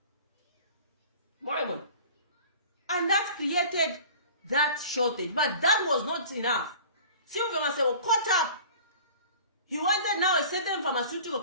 And that created that shortage. But that was not enough. Sylvia Masebo caught up. He wanted now a certain pharmaceutical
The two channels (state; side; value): inverted; both; correlation -0.43